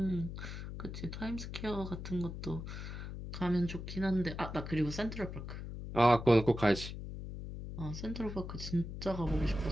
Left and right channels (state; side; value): noise; left; hum, 8 dB below the sound